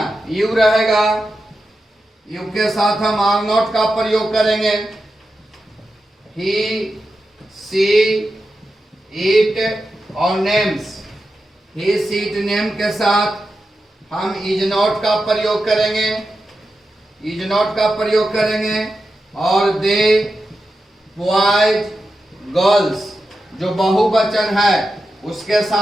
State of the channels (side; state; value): both; normal; correlation 0.90